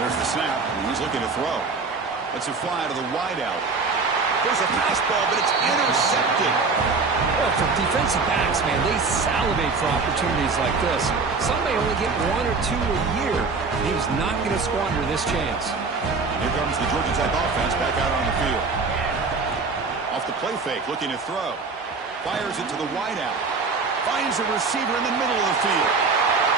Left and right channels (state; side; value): quieter; left; 4.4 dB